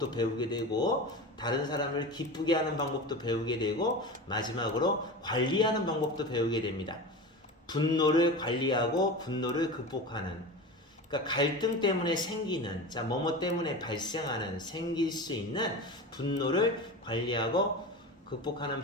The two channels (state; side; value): normal; both; correlation 0.28